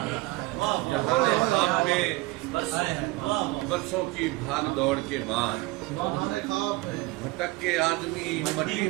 जहाने ख्वाब में बरसों की भाग दौड़ के बाद भटक के आदमी मट्टी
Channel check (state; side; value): quieter; left; 21.3 dB